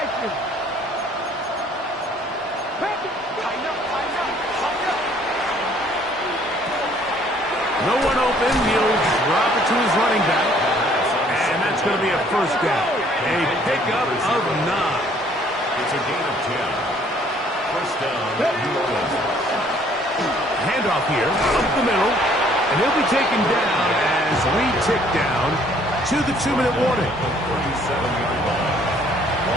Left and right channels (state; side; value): normal; both; correlation 0.60